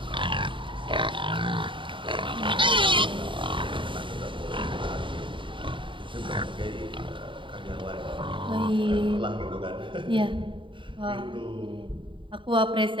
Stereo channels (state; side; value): late; left; 0.24 ms